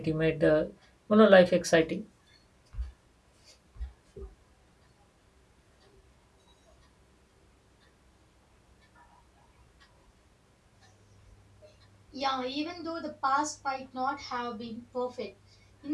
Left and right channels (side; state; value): both; identical; correlation 1.00